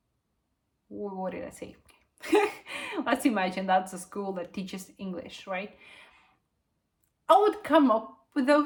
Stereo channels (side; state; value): both; identical; correlation 1.00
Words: What did I say? Let's imagine that's a school that teaches English, right? I would come up with